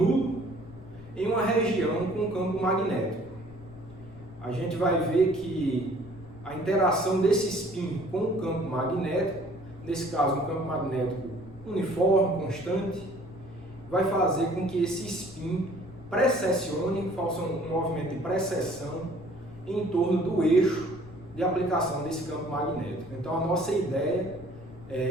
em uma região com campo magnético. A gente vai ver que a interação desse spin com o campo magnético, nesse caso um campo magnético uniforme, constante, vai fazer com que esse spin precessione, faça um movimento de precessão em torno do eixo de aplicação desse campo magnético. Então a nossa ideia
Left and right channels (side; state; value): left; noise; rumble, 19 dB below the sound